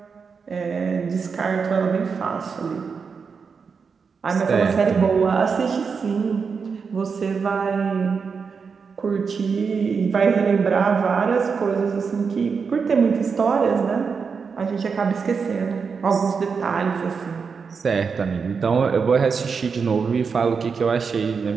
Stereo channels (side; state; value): left; quieter; 5.6 dB